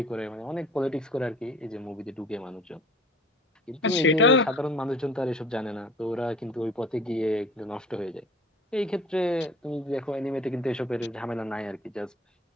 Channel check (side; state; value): both; normal; correlation 0.47